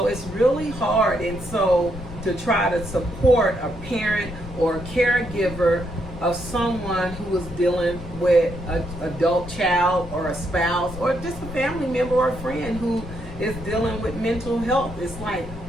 it's really hard. And so to try to support a parent or a caregiver of someone who is dealing with an adult child or a spouse or just a family member or a friend who is dealing with mental health. It's like,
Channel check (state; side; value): noise; left; rumble, 12 dB below the sound